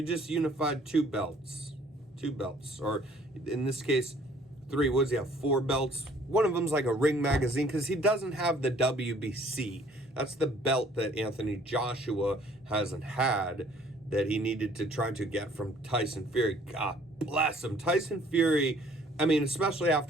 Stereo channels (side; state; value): both; normal; correlation 0.58